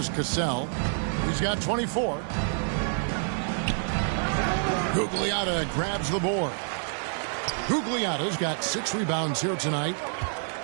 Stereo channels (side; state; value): left; silent; digital silence